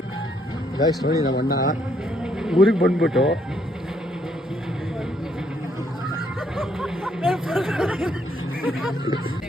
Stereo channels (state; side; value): normal; both; correlation 0.71